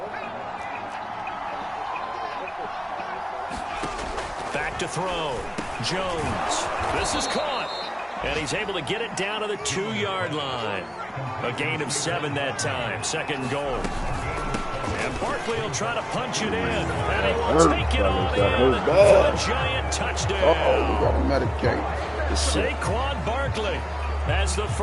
Back to throw. Jones. This is caught. And he's able to get it down to the 2-yard line. A gain of 7 that time. 2nd and goal. And Barkley will try to punch it in. And he will take it on in for a giant touchdown. Uh-oh, we got to medicate. Saquon Barkley, as the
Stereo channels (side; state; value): both; identical; correlation 1.00